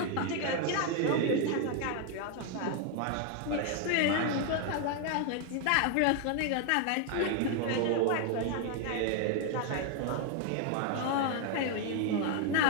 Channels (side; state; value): both; different; correlation 0.00